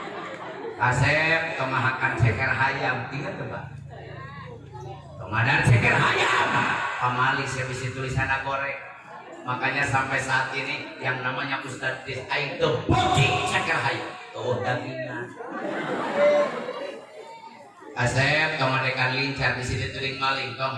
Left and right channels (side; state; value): both; identical; correlation 1.00